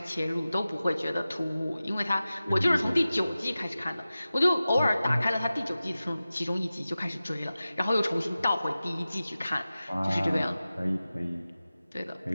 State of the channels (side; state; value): both; inverted; correlation -0.95